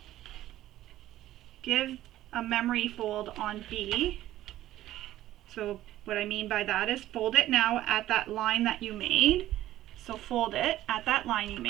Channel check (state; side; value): quieter; left; 14.1 dB